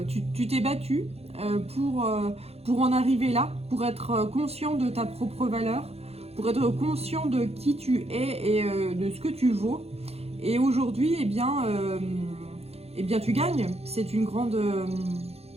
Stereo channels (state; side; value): late; left; 0.30 ms